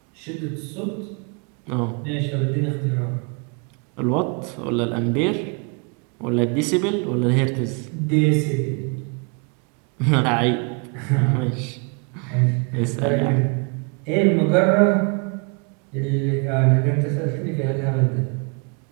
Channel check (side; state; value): left; quieter; 34.9 dB